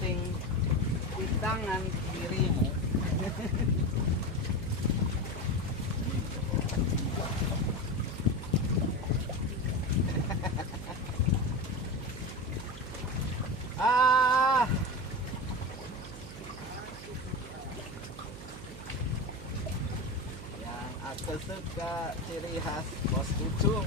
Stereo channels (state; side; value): noise; right; hum, 13 dB below the sound